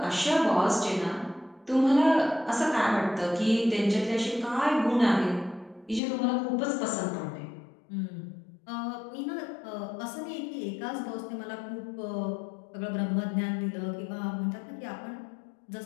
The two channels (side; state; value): right; drops out; at 6.0 s